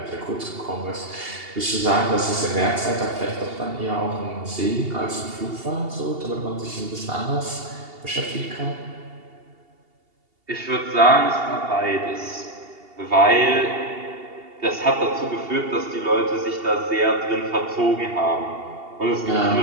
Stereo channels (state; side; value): late; left; 2.8 ms